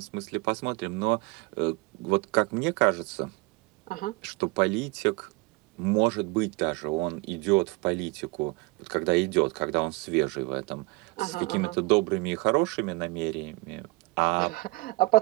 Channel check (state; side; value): quieter; left; 23.6 dB